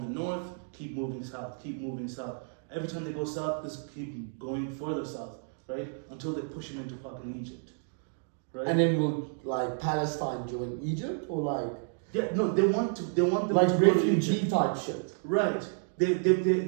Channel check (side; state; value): left; silent; digital silence